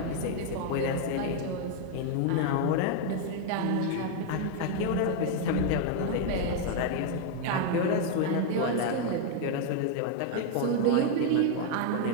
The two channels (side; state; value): both; different; correlation 0.00